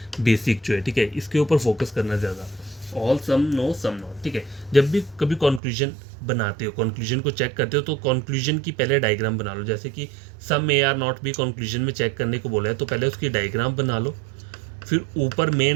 बेसिक जो है, ठीक है, इसके ऊपर फोकस करना ज़्यादा, all, some, no, some not, ठीक है। जब भी कभी कंक्लूजन बनाते हो, कंक्लूजन को चेक करते हो, तो कंक्लूजन की पहले डायग्राम बना लो। जैसे कि सम ए आर नॉट भी कंक्लूजन में चेक करने को बोला है, तो पहले उसकी डायग्राम बना लो, फिर ऊपर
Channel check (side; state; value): left; drops out; at 5.6 s